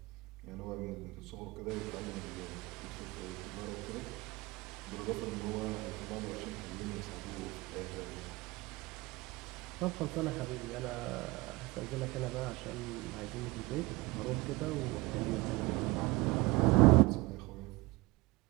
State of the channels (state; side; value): quieter; left; 22.7 dB